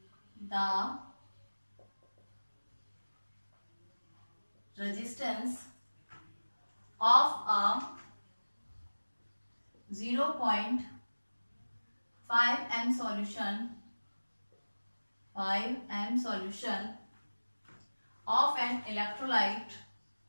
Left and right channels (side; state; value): both; inverted; correlation -1.00